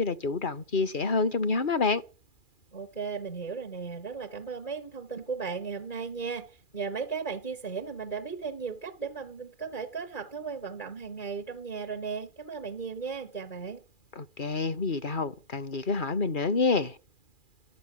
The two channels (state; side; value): late; right; 2.4 ms